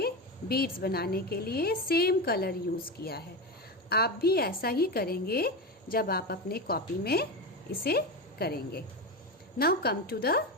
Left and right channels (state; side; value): normal; both; correlation 0.19